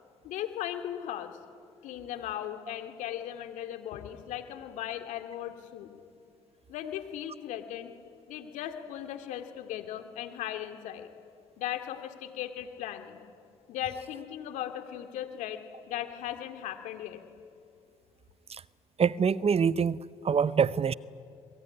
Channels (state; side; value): normal; both; correlation 0.44